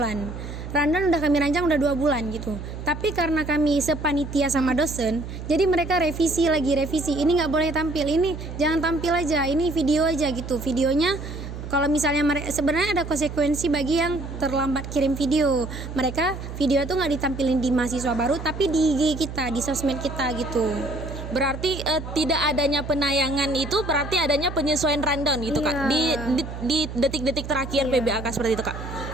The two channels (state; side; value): noise; right; hum, 9 dB below the sound